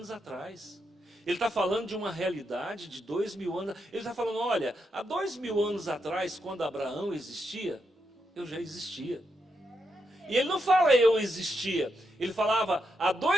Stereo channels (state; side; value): normal; both; correlation 0.83